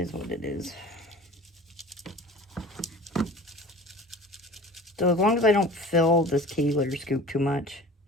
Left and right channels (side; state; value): both; normal; correlation 0.41